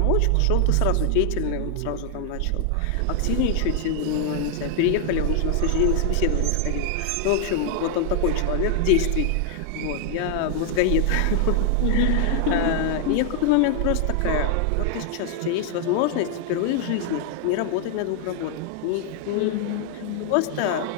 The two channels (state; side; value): different; both; correlation 0.00